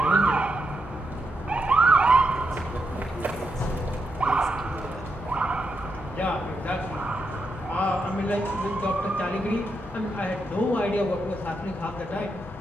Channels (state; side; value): normal; both; correlation 0.83